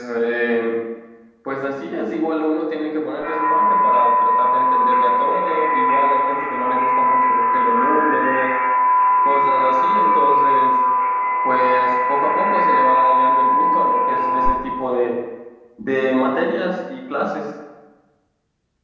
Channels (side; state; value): both; identical; correlation 1.00